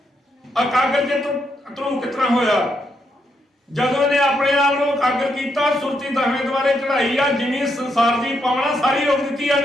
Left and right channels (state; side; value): normal; both; correlation 0.79